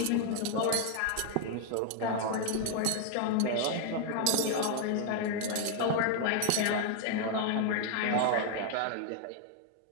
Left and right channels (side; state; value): both; different; correlation 0.00